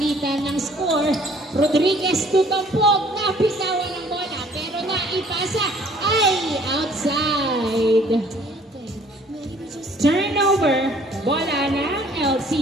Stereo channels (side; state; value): both; normal; correlation 0.57